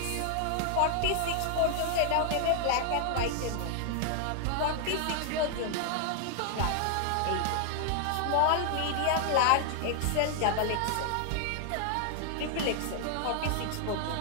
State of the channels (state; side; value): different; both; correlation 0.00